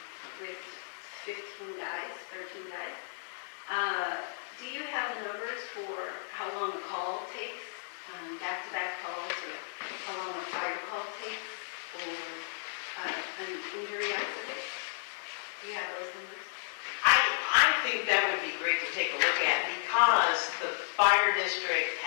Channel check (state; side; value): silent; right; digital silence